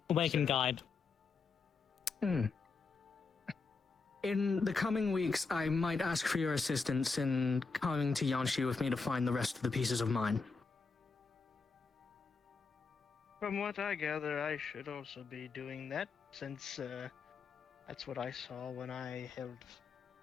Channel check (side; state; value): right; quieter; 4.6 dB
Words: Awakened guide. In the coming weeks, I might ask for your assistance in coming to Yanshi with me to find the rest of the pieces of mine. From what I gather, I should also be doing that, since that's what I saw when I held